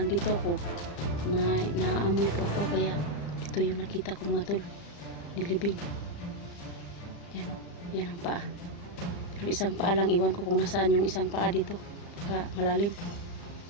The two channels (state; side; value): late; right; 35 ms